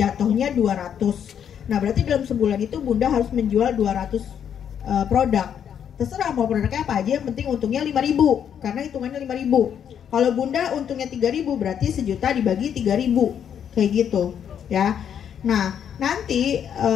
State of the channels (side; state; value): right; quieter; 8.6 dB